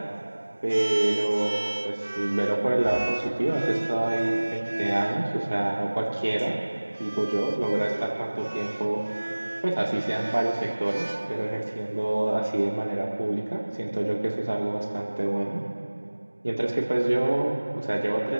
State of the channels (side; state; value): both; inverted; correlation -1.00